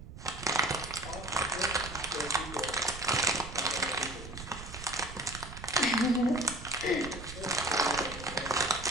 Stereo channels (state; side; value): noise; right; rumble, 12 dB below the sound